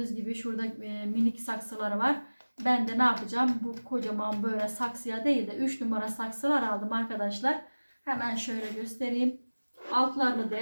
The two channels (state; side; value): inverted; both; correlation -1.00